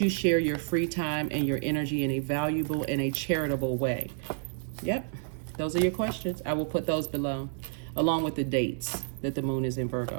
share your free time and your energy in a valuable and a charitable way? Yep, those are your questions. I will put those below, along with the dates that the moon is in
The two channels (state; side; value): silent; left; digital silence